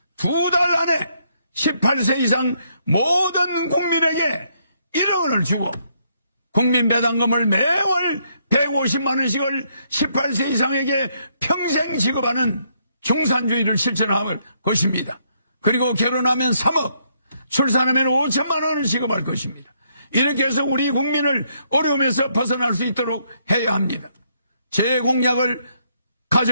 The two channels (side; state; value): both; inverted; correlation -0.73